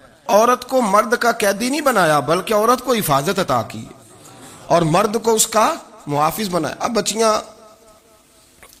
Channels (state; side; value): identical; both; correlation 1.00